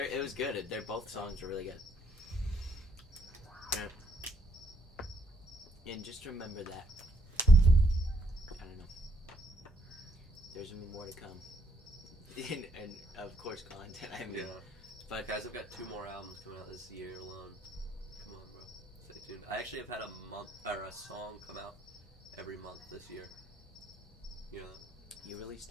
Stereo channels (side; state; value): both; normal; correlation 0.72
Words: was good. They're both songs are really good. And just remember that. I don't know. There's gonna be more to come. and of course, content. I mean, Yeah. but Guys, I've got 2 more albums coming out this year alone. Come on, bro. Stay tuned. I actually have had a song come out every month this year. You know that? you